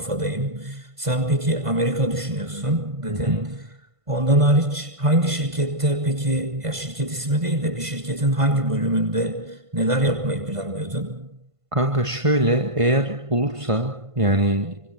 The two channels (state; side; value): late; left; 1.5 ms